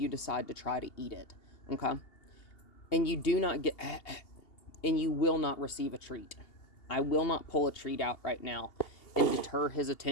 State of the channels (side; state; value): right; late; 2.8 ms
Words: decide to try to eat it, okay? And you do not get... and you will not receive a treat. I will not pull a treat out right now and deter his